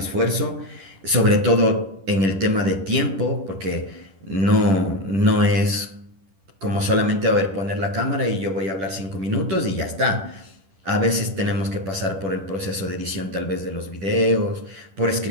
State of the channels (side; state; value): left; late; 10 ms